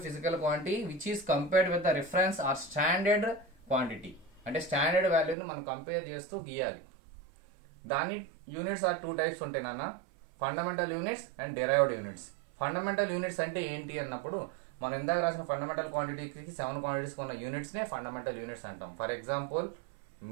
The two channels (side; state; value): left; drops out; at 5.4 s